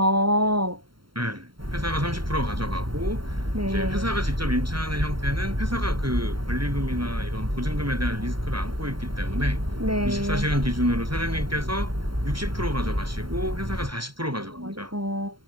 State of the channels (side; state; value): left; late; 0.73 ms